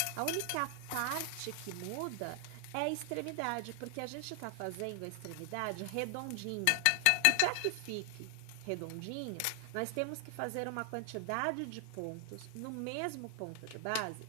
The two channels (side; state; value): both; different; correlation 0.00